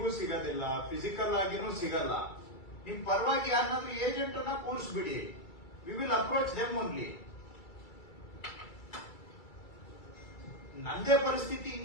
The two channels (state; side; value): late; right; 2.3 ms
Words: ಸಿಗೋದಿಲ್ಲ, ಫಿಸಿಕಲ್ ಆಗಿನೂ ಸಿಗಲ್ಲ. ನಿಮ್ ಪರವಾಗಿ ಯಾರನ್ನಾದ್ರೂ ಏಜೆಂಟ್ ಅನ್ನ ಕೂರಿಸ್ಬಿಡಿ. We will approach them only. ನಂದೇ ಪರಿಸ್ಥಿತಿ